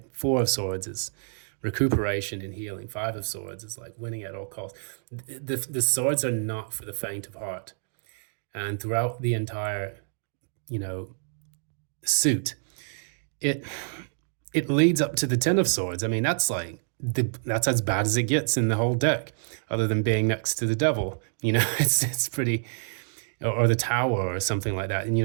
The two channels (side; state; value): left; silent; digital silence